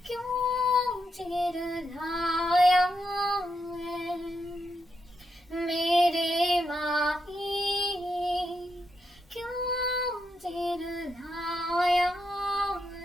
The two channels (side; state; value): both; normal; correlation 0.82